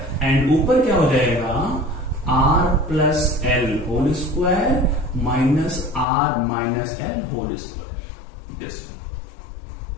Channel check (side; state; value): right; drops out; at 6.1 s